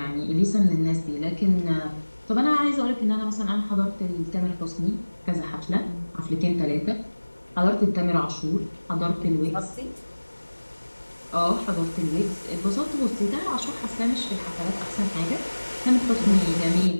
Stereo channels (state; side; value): inverted; both; correlation -1.00